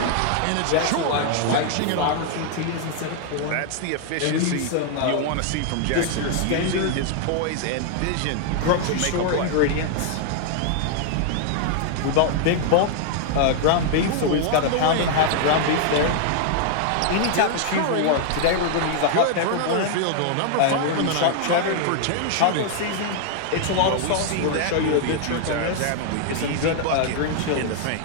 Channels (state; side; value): different; both; correlation 0.00